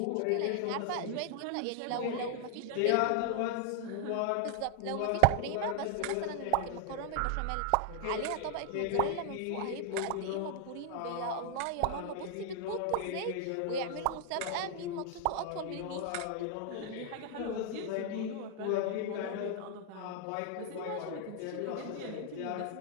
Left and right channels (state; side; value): different; both; correlation 0.00